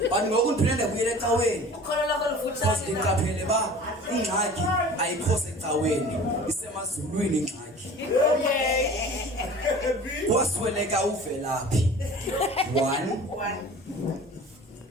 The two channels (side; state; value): both; normal; correlation 0.42